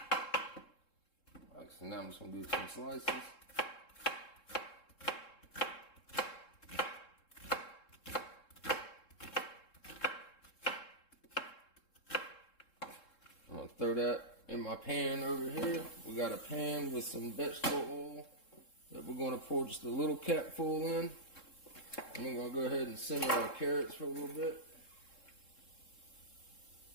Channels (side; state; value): right; late; 3.7 ms